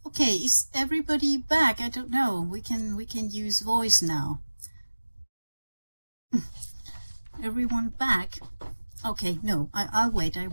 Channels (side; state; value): both; inverted; correlation -1.00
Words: Okay, is everybody back? I don't know. We can use voice now. Everyone back? Okay, no, I'll wait.